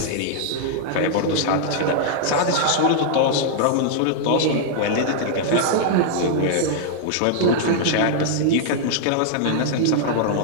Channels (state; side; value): different; both; correlation -0.01